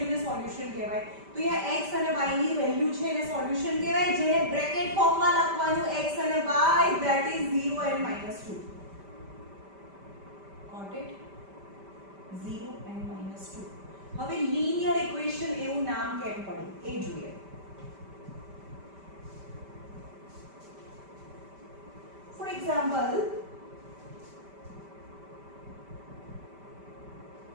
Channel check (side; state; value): left; late; 5.1 ms